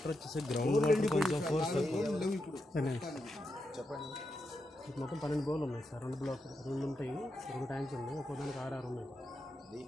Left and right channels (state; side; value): normal; both; correlation 0.85